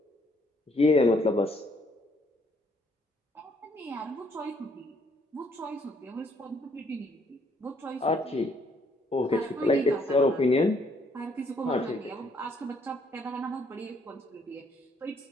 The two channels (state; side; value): normal; both; correlation 0.67